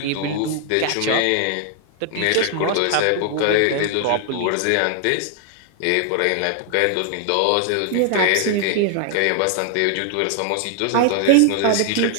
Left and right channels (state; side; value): different; both; correlation 0.00